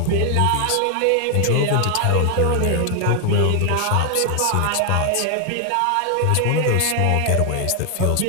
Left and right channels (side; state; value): both; different; correlation 0.00